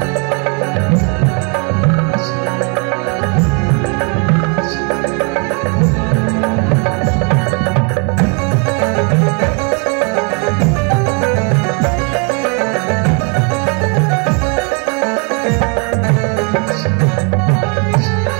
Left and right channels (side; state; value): left; quieter; 35.4 dB